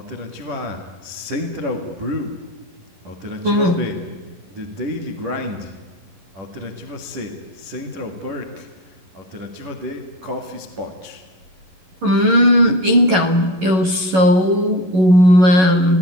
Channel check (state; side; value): late; left; 11 ms